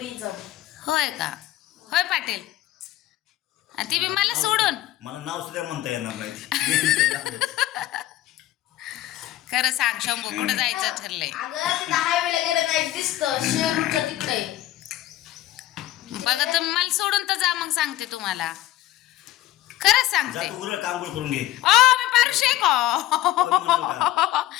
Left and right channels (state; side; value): quieter; right; 14.4 dB